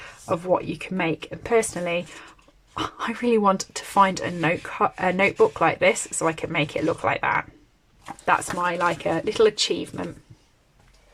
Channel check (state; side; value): identical; both; correlation 1.00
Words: of what you can make. And personally, I really want to find a notebook like this so I can make it look like that. That's my a little achievement.